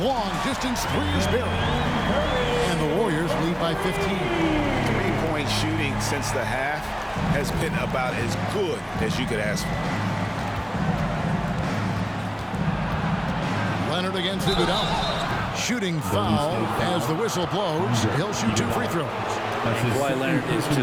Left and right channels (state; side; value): identical; both; correlation 1.00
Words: long distance three is buried. And the Warriors lead by 15. 3-point shooting since the half has been about as good as you could ask for. Leonard against Iguodala. Shooting foul as the whistle blows. He'll shoot 2 free throws. Kawhi Leonard is